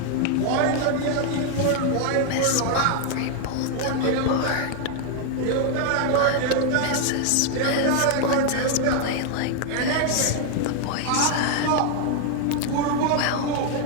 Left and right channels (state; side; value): different; both; correlation 0.00